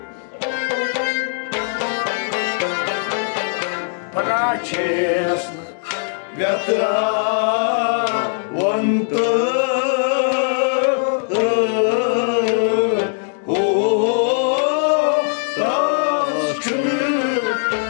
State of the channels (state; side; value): silent; right; 64 dB below the other